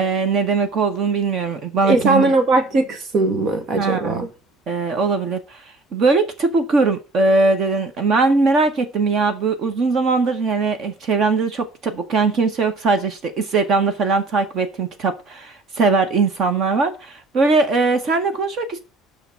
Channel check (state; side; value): quieter; left; 3.3 dB